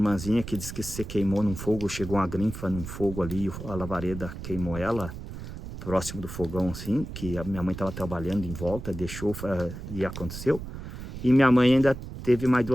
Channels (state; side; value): noise; right; rumble, 10 dB below the sound